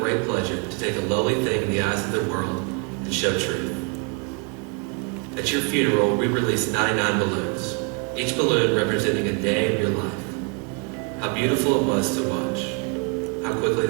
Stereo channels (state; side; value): quieter; left; 35.4 dB